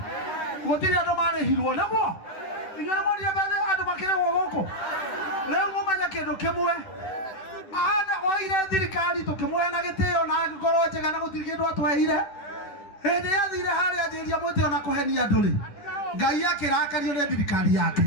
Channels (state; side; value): late; right; 10 ms